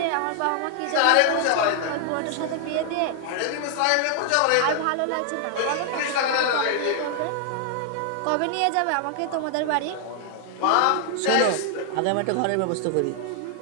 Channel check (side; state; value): both; different; correlation 0.00